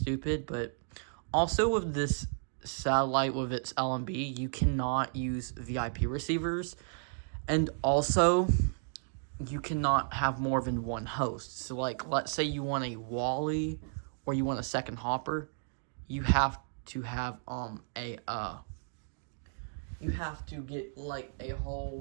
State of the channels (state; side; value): silent; left; digital silence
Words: But also with this satellite, with its LMB, you cannot use VIP receivers, and also you cannot have more than one host. So like, let's say you want a Wally or you want a second Hopper, you have to have you have to get like a